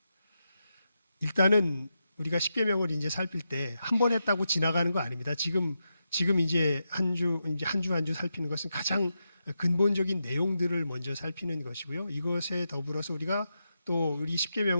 일단은 우리가 십계명을 이제 살필 때 한 번 했다고 지나가는 거 아닙니다. 지금 이제 한 주 살피는 것은 가장 근본적인 내용들을 먼저 살피는 것이고요. 이것에 더불어서 우리가 또 우리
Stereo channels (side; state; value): both; inverted; correlation -0.87